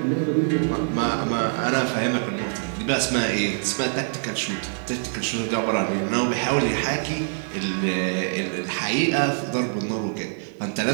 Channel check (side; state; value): left; silent; 56 dB below the other